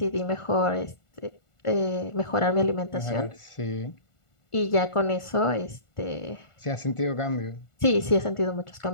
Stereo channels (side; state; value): right; late; 1.4 ms